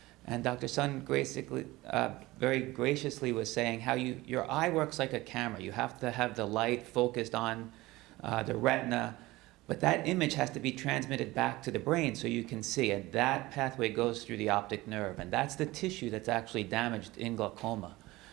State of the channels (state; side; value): quieter; left; 19.4 dB